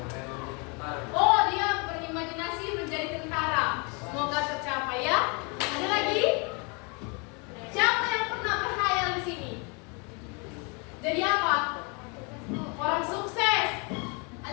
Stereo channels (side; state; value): right; quieter; 32.7 dB